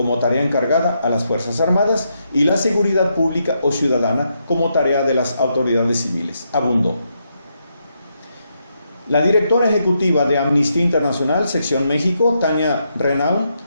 tarea encargada a las Fuerzas Armadas y la seguridad pública o ciudadana como tarea de las autoridades civiles, abundó. La directora ejecutiva de Amnistía Internacional, Sección México, Tania Renaud,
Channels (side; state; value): both; inverted; correlation -0.80